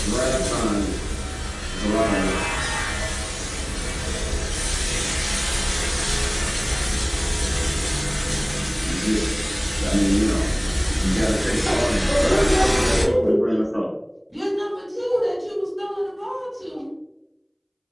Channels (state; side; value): identical; both; correlation 1.00